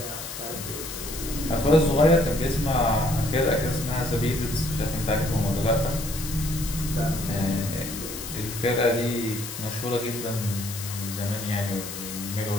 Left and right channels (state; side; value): noise; left; hiss, 9 dB below the sound